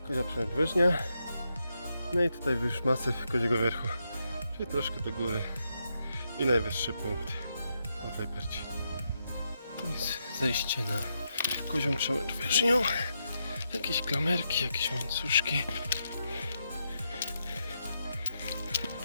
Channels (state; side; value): inverted; both; correlation -0.83